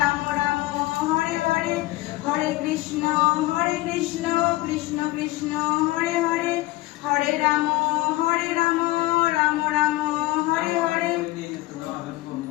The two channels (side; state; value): right; quieter; 19.3 dB